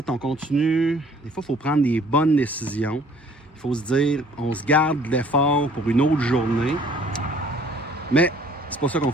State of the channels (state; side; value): normal; both; correlation 0.56